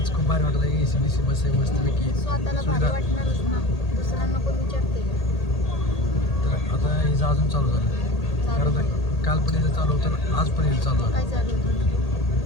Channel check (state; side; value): late; right; 1.8 ms